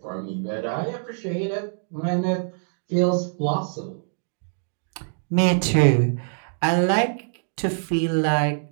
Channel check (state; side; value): silent; left; digital silence